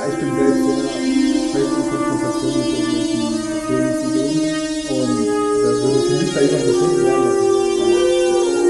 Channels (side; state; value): both; identical; correlation 1.00